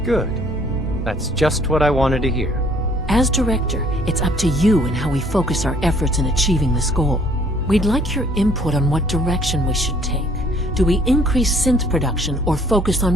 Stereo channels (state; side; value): normal; both; correlation 0.60